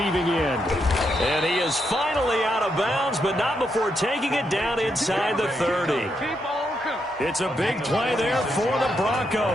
end. And he is finally out of bounds, but not before taking it down inside the 30. It's a big play there for the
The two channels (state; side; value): normal; both; correlation 0.81